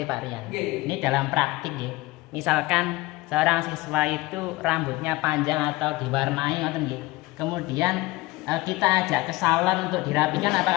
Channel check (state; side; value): quieter; right; 20.6 dB